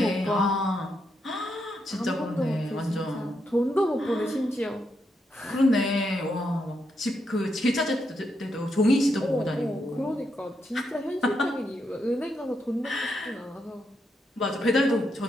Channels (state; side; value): normal; both; correlation 0.81